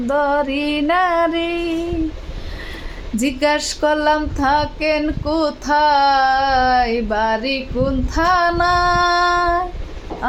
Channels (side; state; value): both; identical; correlation 1.00